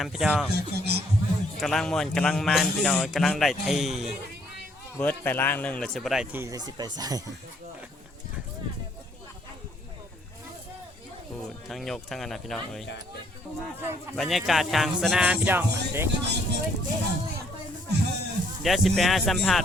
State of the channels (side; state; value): both; normal; correlation 0.67